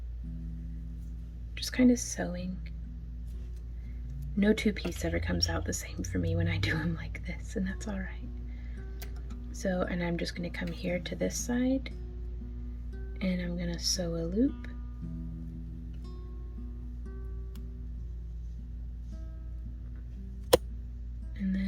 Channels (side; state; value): both; identical; correlation 1.00